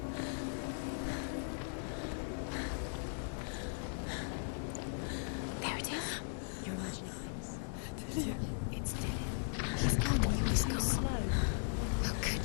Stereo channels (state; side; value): silent; right; digital silence